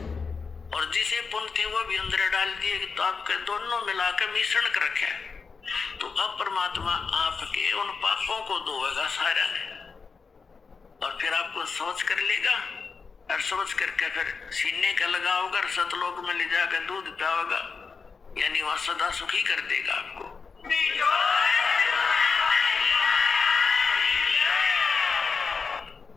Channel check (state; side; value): quieter; right; 5.1 dB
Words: और जिसे पुण्य थे वो भी अंदर डाल दिए, तो आपके दोनों मिलाकर मिश्रण कर रखे। तो अब परमात्मा आपके उन पापों को धोएगा सारा ने, और फिर आपको सोच कर लेगा, और सोच करके फिर सीने का लगाओगा और सतलोक में ले जाकर दूध पियाओगा, यानी वह सदा सुखी कर देगा आपको।